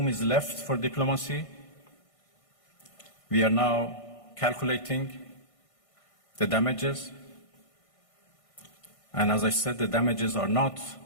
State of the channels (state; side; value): late; right; 1.5 ms